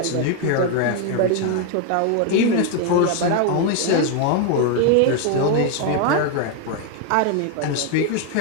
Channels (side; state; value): both; different; correlation 0.01